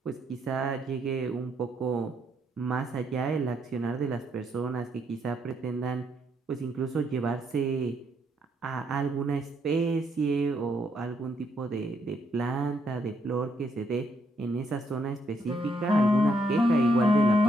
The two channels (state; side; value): normal; both; correlation 0.74